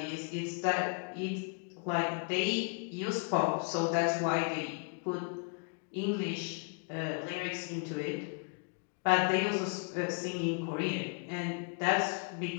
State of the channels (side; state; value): right; quieter; 38.7 dB